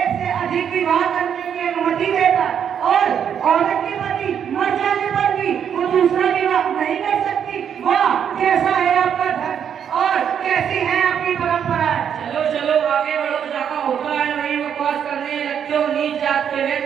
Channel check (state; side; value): quieter; left; 8.3 dB